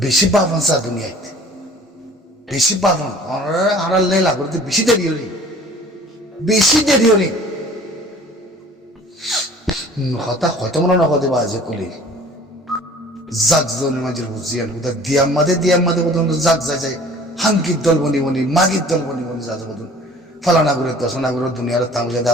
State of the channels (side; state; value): both; normal; correlation 0.48